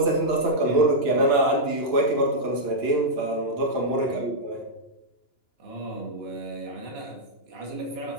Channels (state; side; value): late; right; 2.9 ms